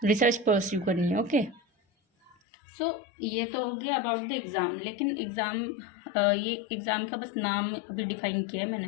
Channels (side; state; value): right; drops out; at 2.4 s